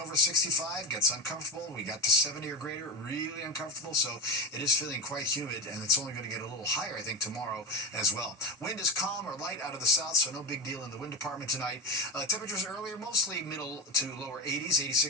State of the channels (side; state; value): both; normal; correlation 0.19